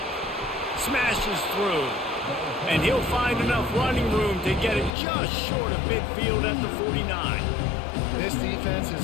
Smashes through. And he'll find enough running room to get it just short of midfield at the 49. This defense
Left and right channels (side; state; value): right; drops out; at 4.9 s